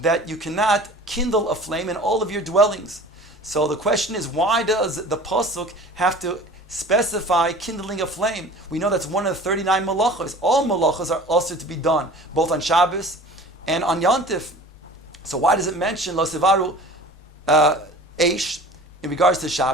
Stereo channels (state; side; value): normal; both; correlation 0.42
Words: you cannot kindle a flame in all of your dwellings. So the question is, why does the Pasuk have to specify kindling a flame? We know that's one of the 39 malachos. All malachos are also to be done, both on Shabbos and on Yantif. So why does it mention Lo Sivaru Eish in regards to